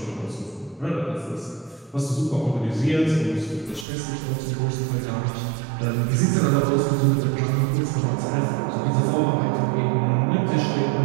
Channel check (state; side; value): drops out; left; at 3.9 s